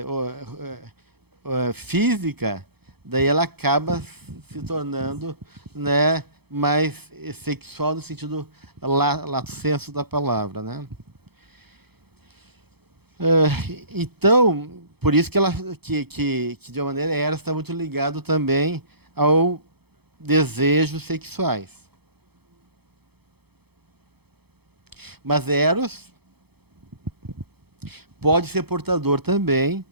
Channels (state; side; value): late; left; 0.97 ms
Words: física, daí ela acaba se tornando, né, mais sexual no sentido lato sensu da palavra, né? Então, por isso que ela que de uma maneira Eros está muito ligado também ao desejos sexuais. Mas Eros pode ser portador também